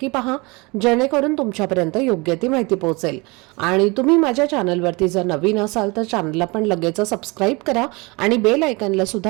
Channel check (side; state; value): left; quieter; 26.4 dB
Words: पहा, जेणेकरून तुमच्यापर्यंत योग्य ती माहिती पोहोचेल. आणि तुम्ही माझ्या चॅनलवरती जर नवीन असाल तर चॅनलला पण लगेच सबस्क्राईब करा आणि बेल आयकॉनला